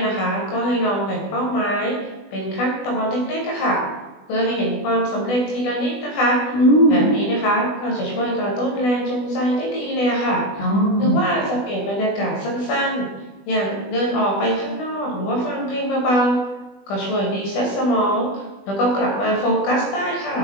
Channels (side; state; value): right; late; 20 ms